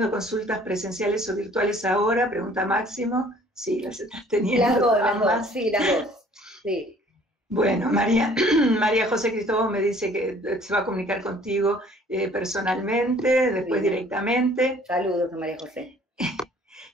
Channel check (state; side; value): normal; both; correlation 0.55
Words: consultas presenciales o virtuales ahora, pregunta Máximo. Sí, las estás teniendo. Las dos, sí, las dos, sí. Bueno, María José Cristóbal me dice que se va a comunicar contigo personalmente, después directamente. Saludos a María José.